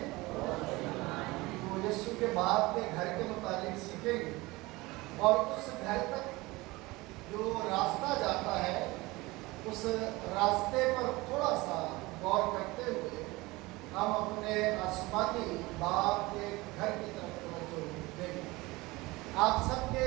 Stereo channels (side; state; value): left; quieter; 21.7 dB